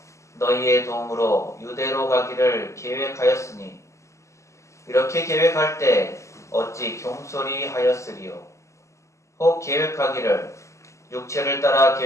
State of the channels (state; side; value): late; right; 0.14 ms